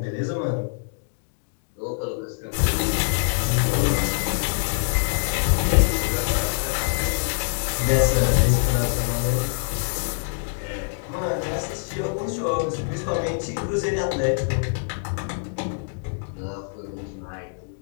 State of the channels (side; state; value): right; silent; digital silence